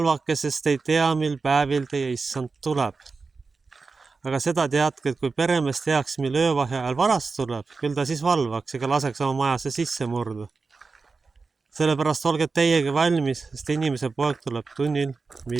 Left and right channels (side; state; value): left; quieter; 4.3 dB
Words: sest ei tea, mil päevil teie issand tuleb. Aga seda teadke, et kui peremees teaks, mil öövahe ajal varast tuleb, küll ta siis valvaks ega laseks oma majasse sisse murda. Sellepärast olge teiegi valmis, sest inimese poeg tuleb tunnil,